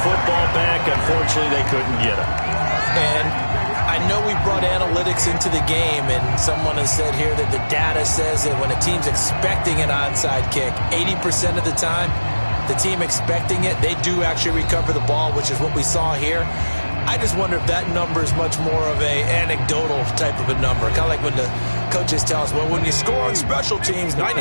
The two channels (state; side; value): inverted; both; correlation -1.00